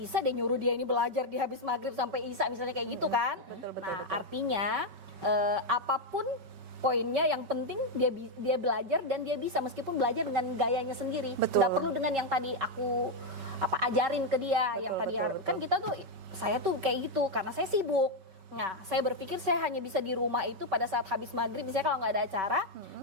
deh nyuruh dia ini belajar di habis maghrib sampai isya misalnya kayak gitu kan. Betul, Nah betul. artinya apapun poinnya yang penting dia belajar dan dia bisa meskipun belajar dengan gayanya sendiri. Betul. Nggak perlu dengan yang tadi aku ajarin ke dia yang tadi betul, kan kita tuh saya tuh kayak gitu karena saya sibuk. Nah, saya berpikir saya hanya bisa di rumah itu pada saat habis maghrib misalnya kalau nggak ada acara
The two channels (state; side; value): late; left; 5.2 ms